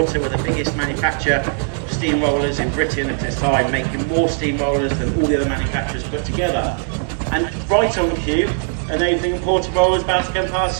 were the biggest manufacturer of steam rollers in Britain at this time, making more steam rollers than all the other manufacturers put together. And right on cue, an Aveling and Porter roller is about to come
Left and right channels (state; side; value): silent; left; 55 dB below the other